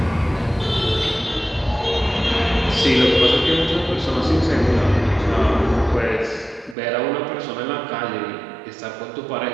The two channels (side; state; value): left; drops out; at 6.8 s